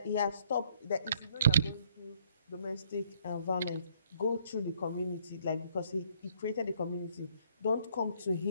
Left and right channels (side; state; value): both; inverted; correlation -0.65